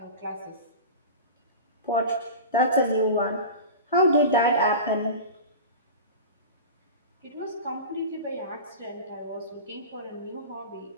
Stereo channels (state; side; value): inverted; both; correlation -0.30